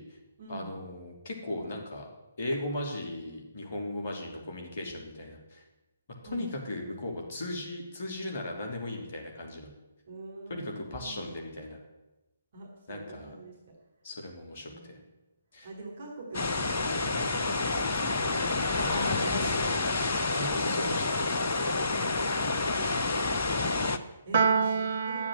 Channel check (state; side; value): inverted; both; correlation -0.68